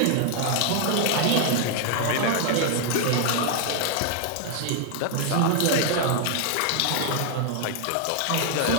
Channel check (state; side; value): different; both; correlation 0.00